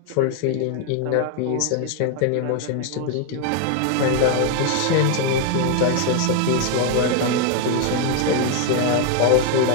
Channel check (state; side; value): different; both; correlation 0.01